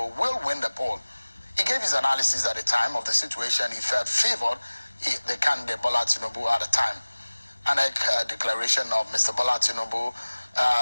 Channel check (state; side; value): inverted; both; correlation -1.00